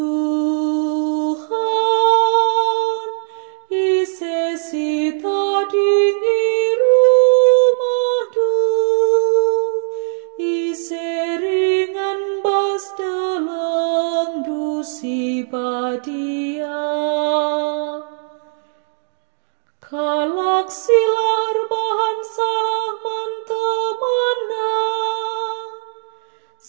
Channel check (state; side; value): silent; left; digital silence